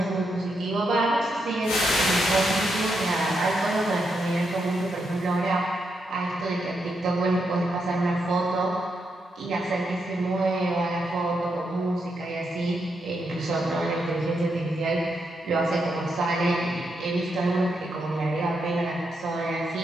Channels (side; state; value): both; normal; correlation 0.82